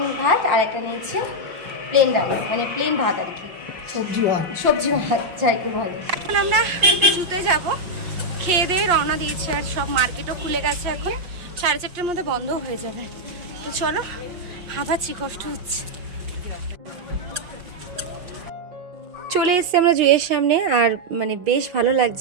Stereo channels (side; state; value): left; late; 5.7 ms